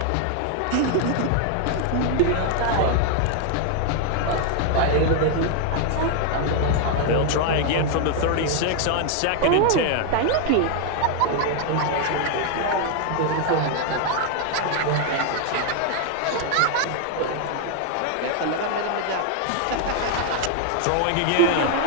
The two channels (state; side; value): different; both; correlation 0.00